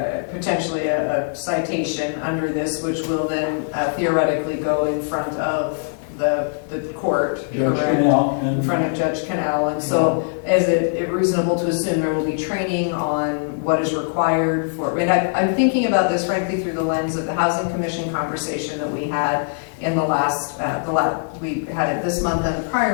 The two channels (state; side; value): silent; right; digital silence